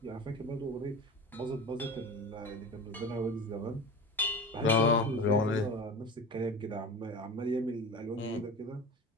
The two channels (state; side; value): normal; both; correlation 0.32